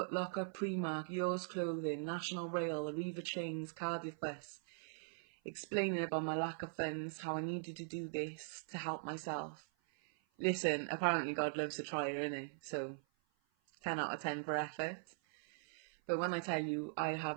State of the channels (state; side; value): silent; left; 50 dB below the other